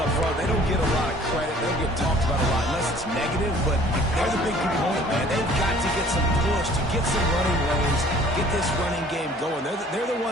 front, they don't get a lot of credit. They don't get talked about a lot unless it's negative, but they're the big component, man. They've got to get some push, to get some running lanes, get this running game going. They're the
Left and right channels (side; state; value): both; normal; correlation 0.53